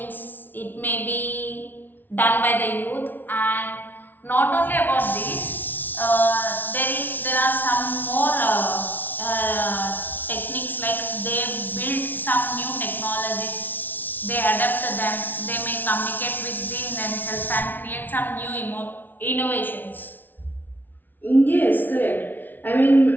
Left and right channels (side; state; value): right; late; 0.088 ms